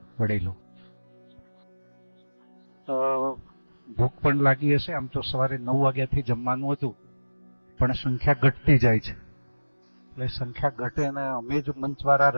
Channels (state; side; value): inverted; both; correlation -1.00